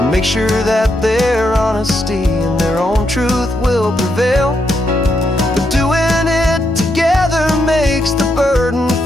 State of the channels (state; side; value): normal; both; correlation 0.80